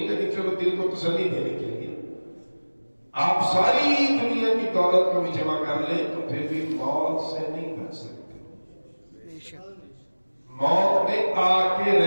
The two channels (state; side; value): inverted; both; correlation -1.00